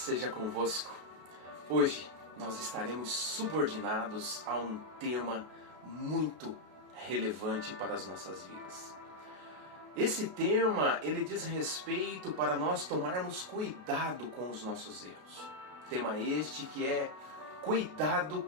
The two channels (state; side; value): late; left; 33 ms